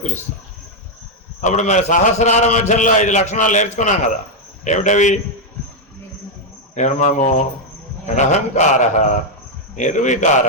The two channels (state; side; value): normal; both; correlation 0.00